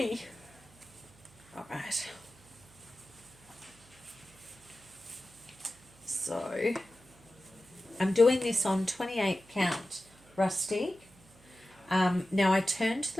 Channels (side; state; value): right; noise; hum, 26 dB below the sound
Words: Alright. Right. So I'm doing this on 28 count rustic. Now I turned